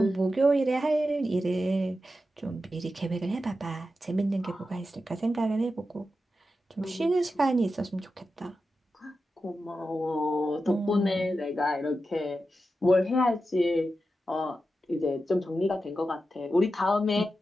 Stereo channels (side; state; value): both; normal; correlation 0.90